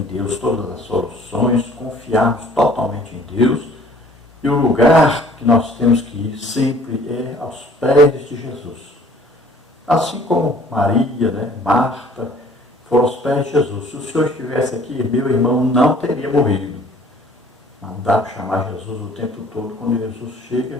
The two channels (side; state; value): both; normal; correlation 0.54